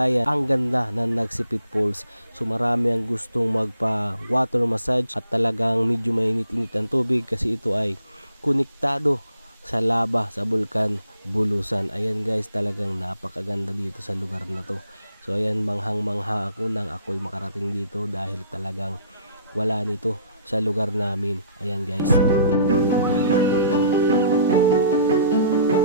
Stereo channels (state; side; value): inverted; both; correlation -0.60